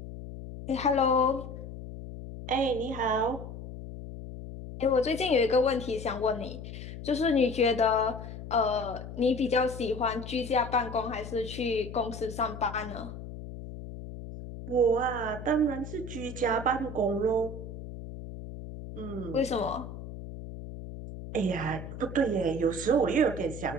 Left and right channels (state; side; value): noise; left; hum, 10 dB below the sound